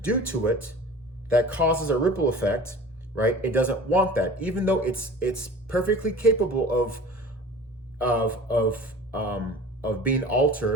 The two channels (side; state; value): both; normal; correlation 0.41